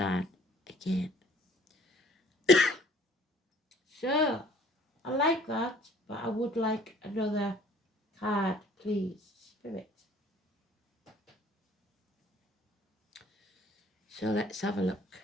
again. So, I like that, but I would like another card, please, Spirit. So let's have a look.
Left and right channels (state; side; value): normal; both; correlation 0.55